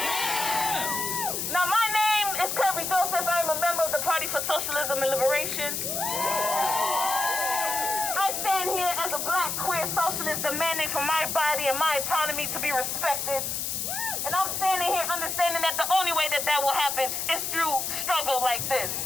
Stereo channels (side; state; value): left; noise; hiss, 2 dB below the sound